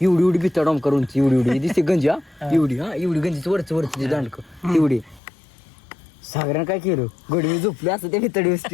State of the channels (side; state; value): right; drops out; at 5.2 s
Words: एवढी भित्ता डॉम करून एवढी दिसते गंजी एवढी गंजीची वरची दांडक एवढी सागऱ्यानं काय केलं गोडी मी झोपले असं त्या भितडी